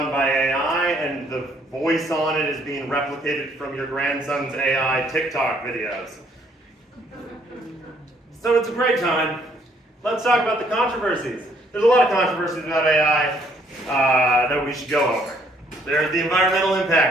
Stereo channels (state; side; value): normal; both; correlation 0.65